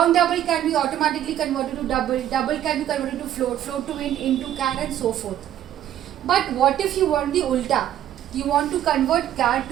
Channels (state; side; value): quieter; left; 11.6 dB